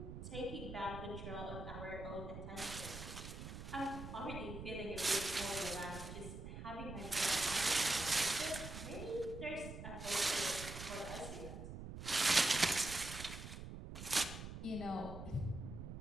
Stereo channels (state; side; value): noise; right; rumble, 9 dB below the sound